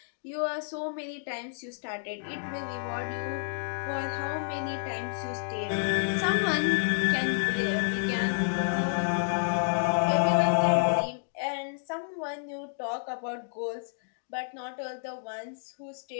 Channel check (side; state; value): right; silent; digital silence